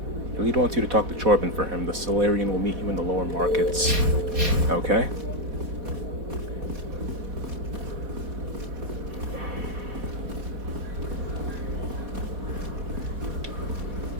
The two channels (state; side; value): late; left; 4.1 ms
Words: The lead wants you to talk to Chorban for him. The Solarian will meet you in the lower markets. Okay.